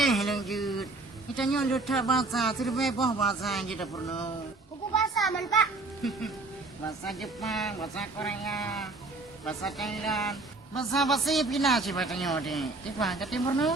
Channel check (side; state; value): left; quieter; 3.3 dB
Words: lanjut. Kita nyolot bahasa, terlebih bahasa yang kita perlu. Buku bahasa man pak. Bahasa Jepang, bahasa Korea, bahasa Thailand, bahasa Filipina siapa tanya deh. Tiba ke timur